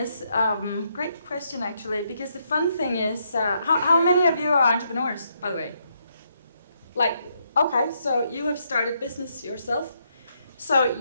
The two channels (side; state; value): both; inverted; correlation -0.76